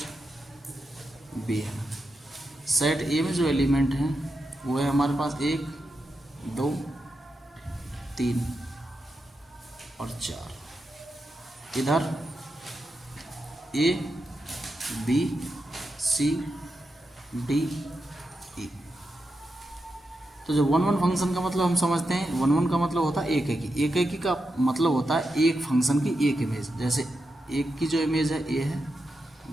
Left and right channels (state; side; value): normal; both; correlation 0.87